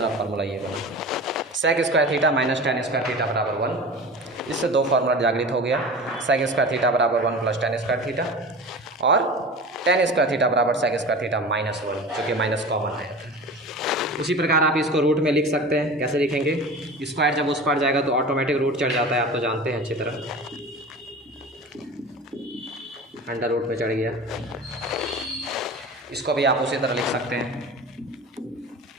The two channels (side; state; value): both; normal; correlation 0.35